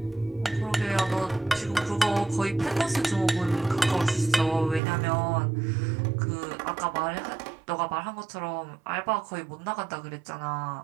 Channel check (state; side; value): drops out; left; at 4.8 s